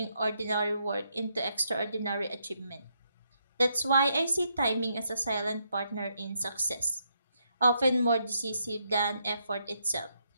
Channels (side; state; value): both; inverted; correlation -0.77